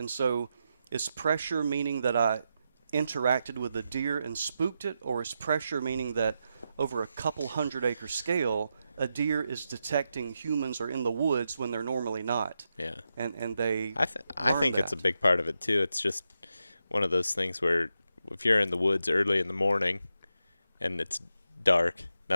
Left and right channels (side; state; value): both; inverted; correlation -0.86